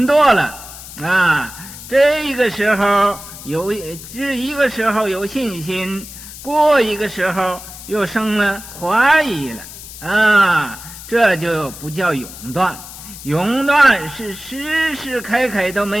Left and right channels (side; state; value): left; noise; hiss, 14 dB below the sound